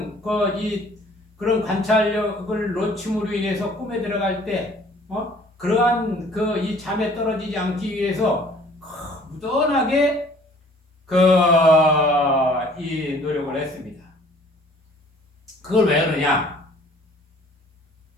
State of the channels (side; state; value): both; normal; correlation 0.54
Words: 그런 관찰력을 놓침으로 인해서 꿈에 들어갈 때 그러한 이 잠에 떨어지지 않기 위해서 무던하게 이 노력을 했습니다. 그걸 왜 그러냐?